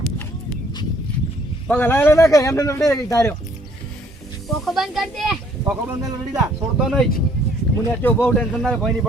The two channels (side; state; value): both; normal; correlation 0.62